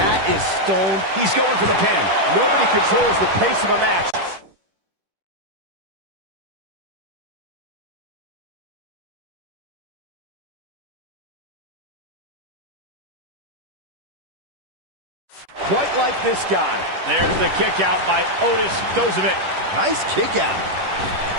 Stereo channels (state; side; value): late; left; 10 ms